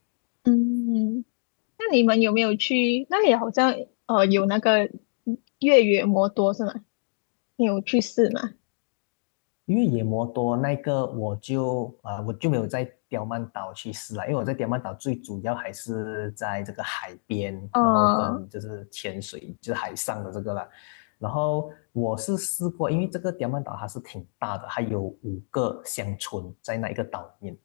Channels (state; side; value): silent; right; digital silence